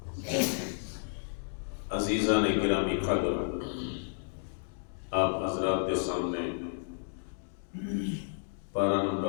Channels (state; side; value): silent; right; digital silence